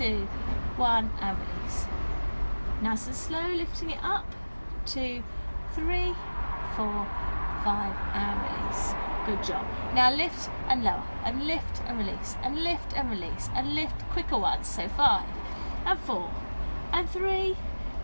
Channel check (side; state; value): both; inverted; correlation -1.00